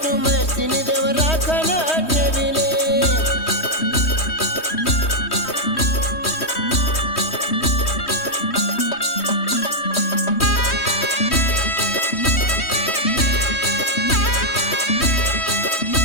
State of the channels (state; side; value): late; right; 3.1 ms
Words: महेश तीन देव राखण ठेविले